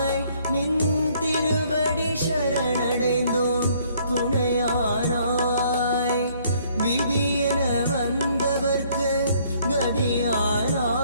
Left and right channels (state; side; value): inverted; both; correlation -0.63